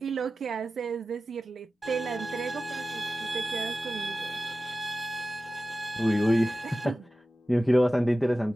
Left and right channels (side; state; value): both; normal; correlation 0.94